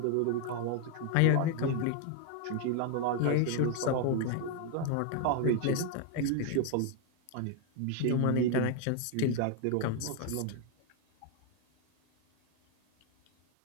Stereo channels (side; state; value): both; different; correlation 0.00